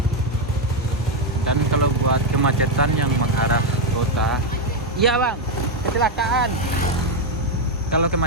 Dan kalau buat kemacetan yang mengarah kota, iya bang, kecelakaan. Kalau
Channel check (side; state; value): both; normal; correlation 0.04